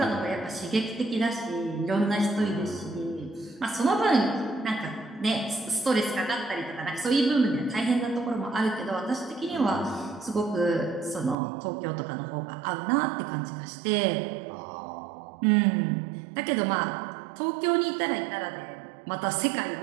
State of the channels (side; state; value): left; drops out; at 11.4 s